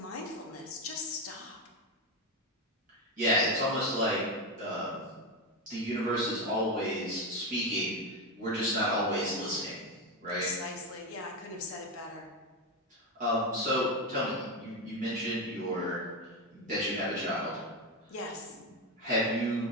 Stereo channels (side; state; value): both; normal; correlation 0.12